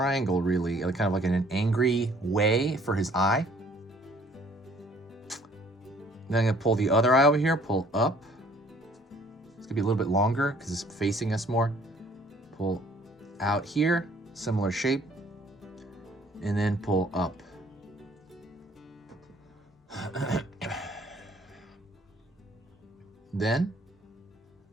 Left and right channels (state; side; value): normal; both; correlation 0.58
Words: really, kind of like in an angry way for his eye. Then I'm going to pull the other eye over here, pull up. It's going to be a little bit longer because it's facing us more. Pull out here, similar shape. And then pull up. Then,